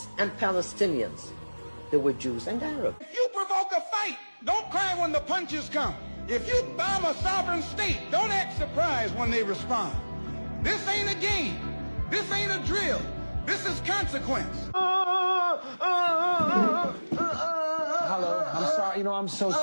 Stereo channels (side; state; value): both; inverted; correlation -1.00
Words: and Palestinians. There were Jews and Arabs. If you provoke a fight, don't cry when the punches come. If you bomb a sovereign state, don't act surprised when they respond. This ain't a game. This ain't a drill. This is consequence. Hello, I'm sorry. I'm so